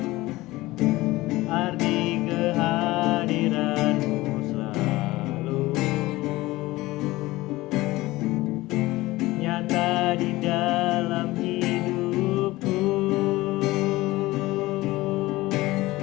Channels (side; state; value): right; quieter; 19.0 dB